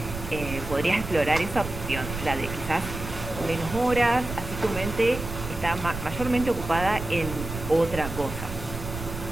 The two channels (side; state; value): right; noise; rumble, 8 dB below the sound